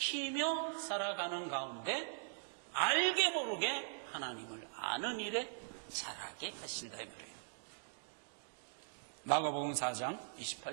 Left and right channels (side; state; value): left; silent; digital silence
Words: 살아가는 가운데 알게 모르게 하나님을 아는 일에 자라게 하신다 이 말이에요. 마가복음 4장